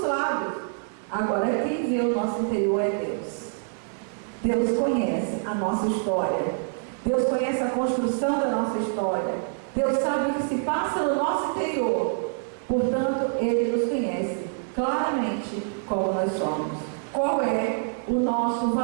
lábios. Agora quem vê o nosso interior é Deus. Deus conhece a nossa história. Deus conhece a construção da nossa história. Deus sabe o que se passa no nosso interior. Portanto, Ele nos conhece claramente como nós somos. Qual é o nosso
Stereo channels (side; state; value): left; silent; digital silence